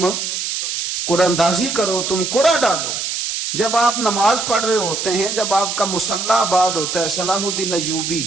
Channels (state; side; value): noise; right; hiss, 3 dB below the sound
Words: قرآن اندازی کرو، تم قرآن ڈالو۔ جب آپ نماز پڑھ رہے ہوتے ہیں، جب آپ کا مصلی آباد ہوتا ہے، صلاح الدین ایوبی